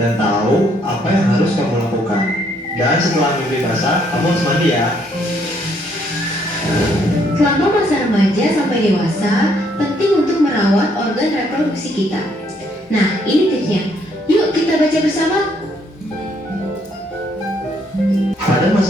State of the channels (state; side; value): normal; both; correlation 0.69